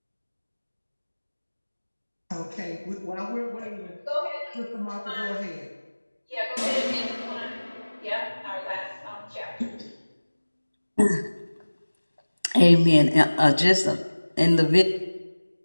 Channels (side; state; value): both; inverted; correlation -1.00